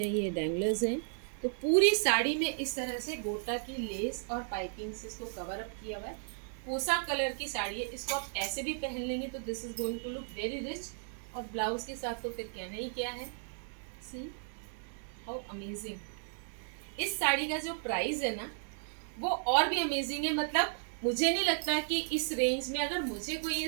ये डैंगलर्स हैं। तो पूरी साड़ी में इस तरह से गोटा की लेस और पाइपिंग से इसको कवर अप किया हुआ है। कोसा कलर की साड़ी है, इसको आप ऐसे भी पहन लेंगे तो this is going to look very rich. और ब्लाउज के साथ तो फिर कहना ही क्या है, सी हाउ अमेजिंग। इस साड़ी का जो प्राइस है ना, वो और भी अमेजिंग है। मतलब मुझे नहीं लगता कि इस रेंज में अगर मुझे कोई ये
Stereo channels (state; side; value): silent; left; digital silence